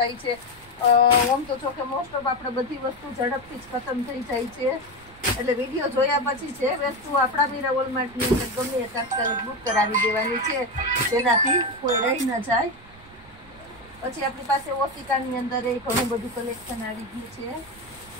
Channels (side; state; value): right; noise; rumble, 24 dB below the sound